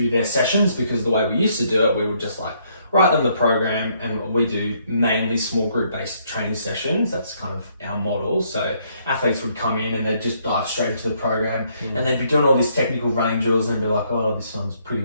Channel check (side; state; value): both; inverted; correlation -0.69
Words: their sessions, because the way we used to do it, we would just like write them the program, and we do mainly small group based training sessions. That's kind of our model. So athletes would come in and they'd just dive straight into the program, and they'd be doing all these technical running drills and be like, oh, this one's pretty